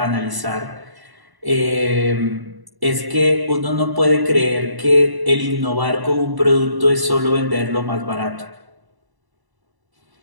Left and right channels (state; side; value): late; left; 1.0 ms